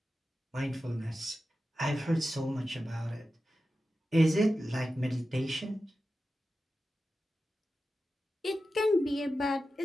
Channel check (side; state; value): both; normal; correlation 0.92